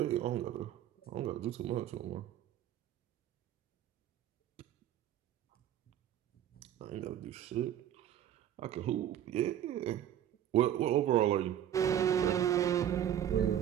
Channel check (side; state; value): left; quieter; 10.8 dB